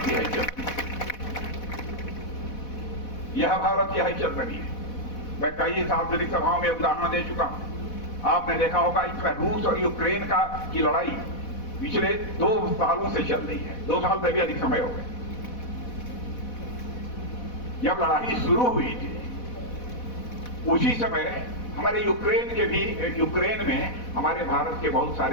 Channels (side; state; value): right; late; 4.1 ms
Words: हैसियत है, यह भारत की हैसियत बनी है। मैं कई सार्वजनिक सभाओं में उदाहरण दे चुका हूं। आपने देखा होगा इसमें रूस और यूक्रेन की लड़ाई पिछले 2 सालों से चल रही है, 2 साल से भी अधिक समय हो गए। जब लड़ाई शुरू हुई थी उसी समय हमारे यूक्रेन में हमारे भारत के बहुत